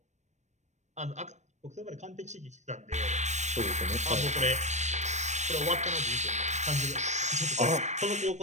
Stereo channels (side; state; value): left; late; 0.34 ms